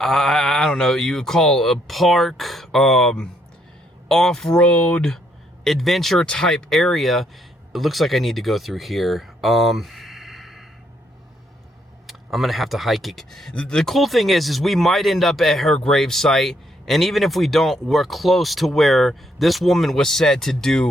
don't know, you would call a park, off-road adventure type area. It looks like I need to go through here. I'm gonna have to hike it. The cool thing is we might end up at her grave site. And even if we don't, we're close to where this woman was said to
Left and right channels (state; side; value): normal; both; correlation 0.72